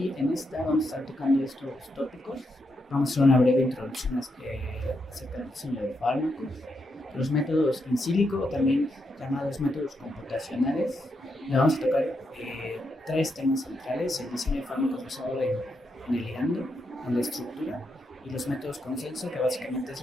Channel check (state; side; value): normal; both; correlation 0.82